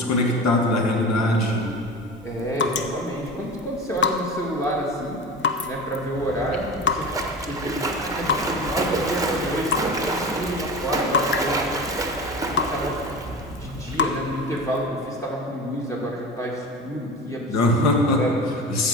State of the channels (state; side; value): normal; both; correlation 0.31